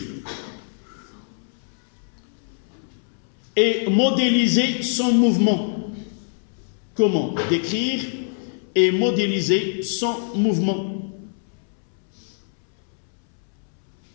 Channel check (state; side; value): silent; right; 63 dB below the other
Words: et modéliser son mouvement? Comment décrire et modéliser son mouvement?